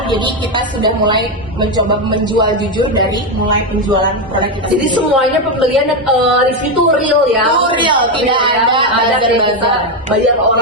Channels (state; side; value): normal; both; correlation 0.08